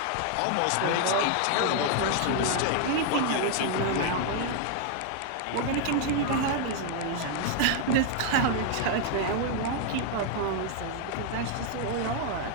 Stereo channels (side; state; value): both; different; correlation 0.00